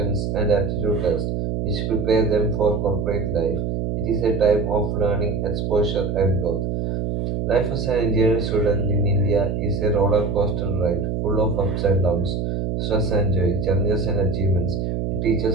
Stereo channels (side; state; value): right; noise; hum, 1 dB below the sound